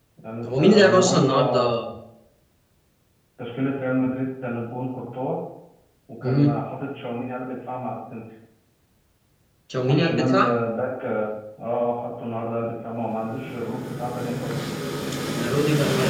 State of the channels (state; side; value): identical; both; correlation 1.00